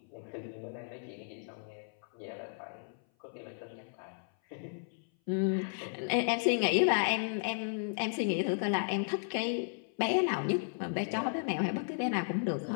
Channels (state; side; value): silent; right; 55 dB below the other